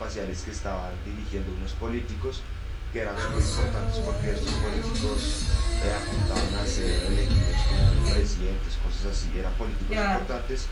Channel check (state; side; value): identical; both; correlation 1.00